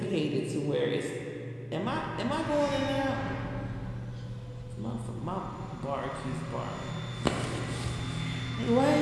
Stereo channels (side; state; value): both; identical; correlation 1.00